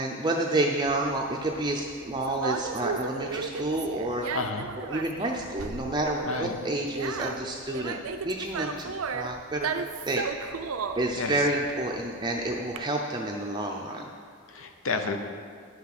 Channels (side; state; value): both; normal; correlation 0.20